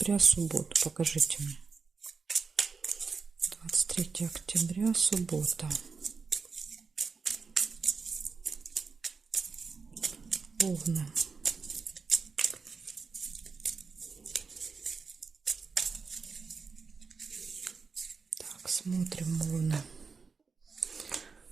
субботу. Покажите мне. 23 октября, суббота. Овны. Так, смотрим Овны.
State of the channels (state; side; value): quieter; left; 5.0 dB